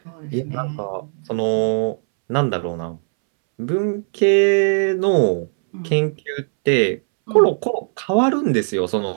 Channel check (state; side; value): silent; left; 66 dB below the other